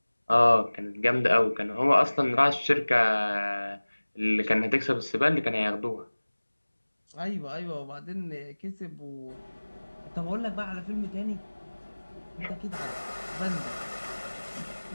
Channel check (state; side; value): inverted; both; correlation -1.00